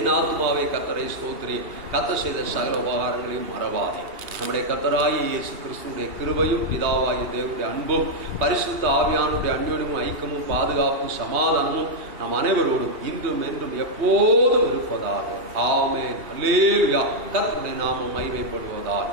ஆத்மாவே கர்த்தரை ஸ்தோத்திரி, கர்த்தர் செய்த சகல உபகாரங்களையும் மறவாதே. நம்முடைய கர்த்தராகிய இயேசு கிறிஸ்துவுடைய கிருபையும், பிதாவாகிய தேவனுடைய அன்பும், பரிசுத்த ஆவியானுடைய அந்யோன்யமும், ஐக்கியமும், பாதுகாப்பும், சமாதானமும் நம் அனைவரோடும் இன்றும் என்றும் எப்போதும் இருப்பதாக. ஆமென். அல்லேலூயா. கர்த்தருடைய நாமம் மகிமைப்படுவதாக.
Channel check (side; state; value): left; late; 2.8 ms